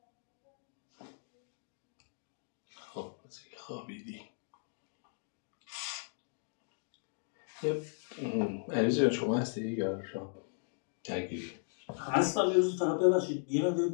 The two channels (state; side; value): silent; right; digital silence